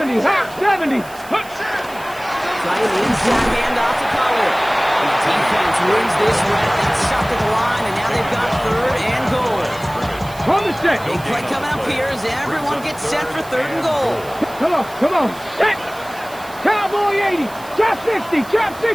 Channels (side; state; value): right; noise; hiss, 20 dB below the sound